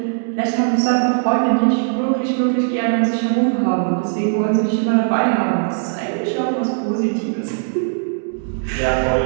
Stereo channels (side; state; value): left; silent; digital silence